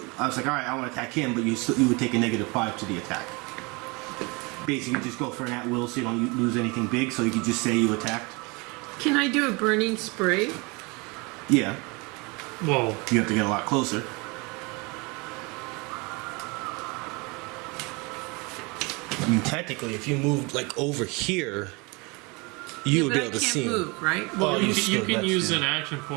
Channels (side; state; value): left; quieter; 27.8 dB